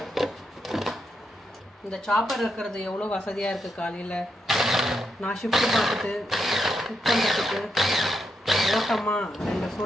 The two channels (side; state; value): both; normal; correlation 0.83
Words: இந்த சாப்பர் இருக்கிறது எவ்வளோ வசதியாக இருக்குது. காலையில் நான் ஷிஃப்ட்டு பார்த்துட்டு குக் பண்ணுறதுக்கு ஓட்டமாக